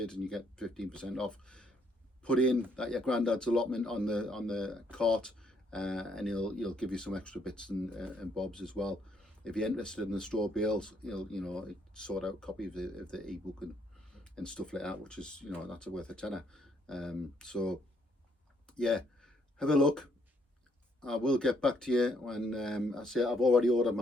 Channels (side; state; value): both; normal; correlation 0.70